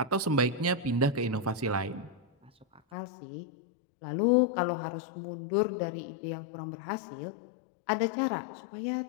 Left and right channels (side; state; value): right; drops out; at 2.8 s